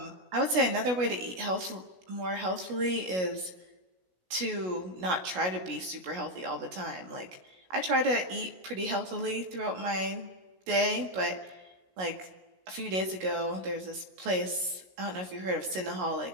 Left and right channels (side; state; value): left; late; 16 ms